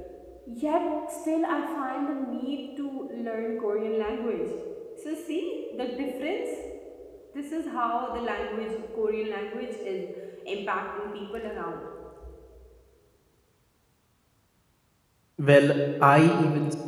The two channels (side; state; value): both; identical; correlation 1.00